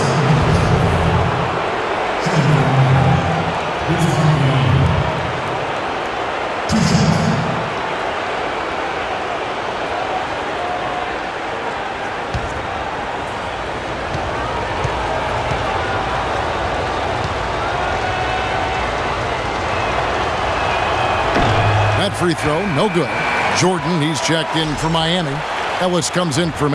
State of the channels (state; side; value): identical; both; correlation 1.00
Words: free throw, no good. Jordan, he's checked in for Miami. Ellis comes in for